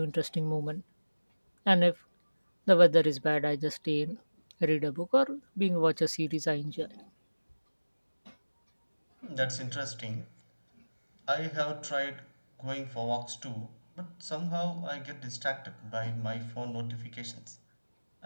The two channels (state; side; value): inverted; both; correlation -1.00